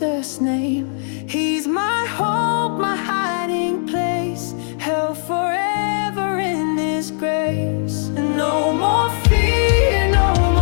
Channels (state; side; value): silent; right; digital silence